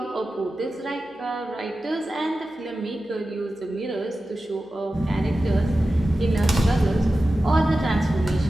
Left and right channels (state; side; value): normal; both; correlation 0.94